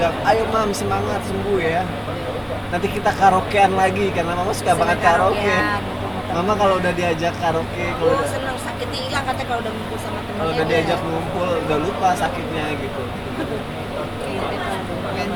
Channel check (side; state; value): both; identical; correlation 1.00